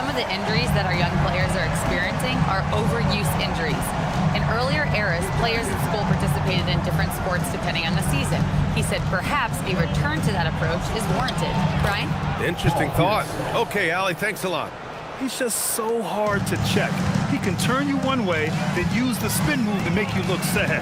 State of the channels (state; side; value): identical; both; correlation 1.00